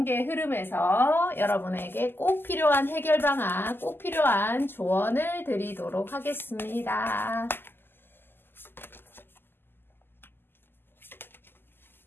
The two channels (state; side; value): late; right; 0.10 ms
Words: 흐름에서 여러분에게 꼭 필요한 해결 방안, 꼭 필요한 조언을 드리도록 하겠습니다.